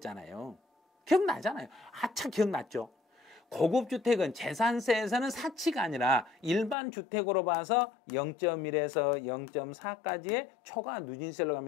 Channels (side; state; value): right; drops out; at 6.8 s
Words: 기억나잖아요. 아차 기억났죠. 고급주택은 재산세에서는 사치가 아니라 일반 주택으로 봐서 0.1에서 0.4까지의 초과 누진세로